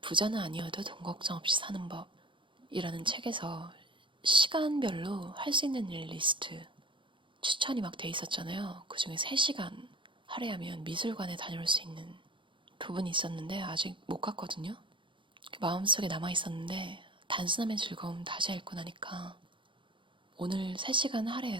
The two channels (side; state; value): left; late; 0.24 ms